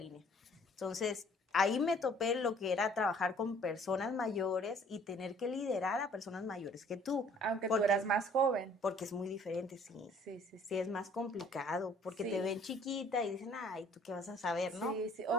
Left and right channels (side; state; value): both; normal; correlation 0.57